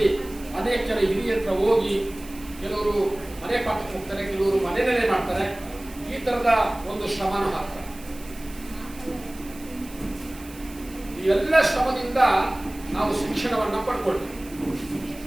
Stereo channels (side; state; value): right; noise; hiss, 19 dB below the sound